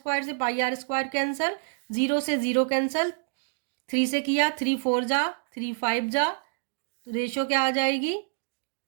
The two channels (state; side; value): silent; left; digital silence